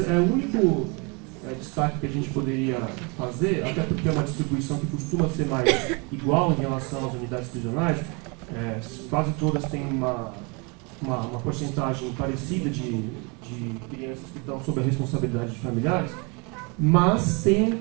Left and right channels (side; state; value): left; quieter; 31.1 dB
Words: único destaque que a gente poderia fazer, até porque é uma distribuição que costuma ser mais igual em relação às unidades prisionais, quase todas têm uma porcentagem parecida de crianças que estão sob a responsabilidade de familiares, mas tem um